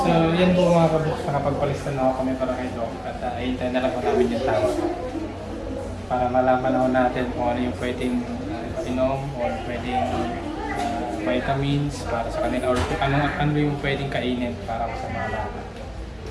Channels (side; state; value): both; identical; correlation 1.00